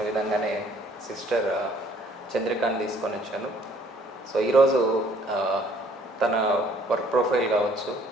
విధంగానే సిస్టర్ చంద్రికాని తీసుకొని వచ్చాను. సో ఈరోజు తన వర్క్ ప్రొఫైల్ కావచ్చు,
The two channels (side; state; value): both; normal; correlation 0.60